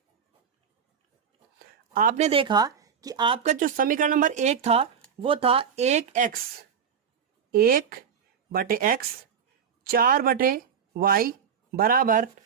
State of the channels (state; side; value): quieter; left; 7.3 dB